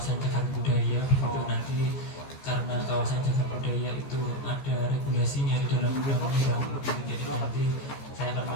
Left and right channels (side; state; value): right; late; 14 ms